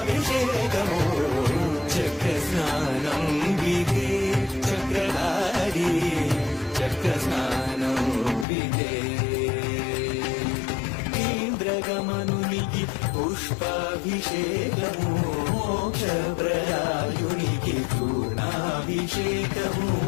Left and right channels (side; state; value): right; drops out; at 8.5 s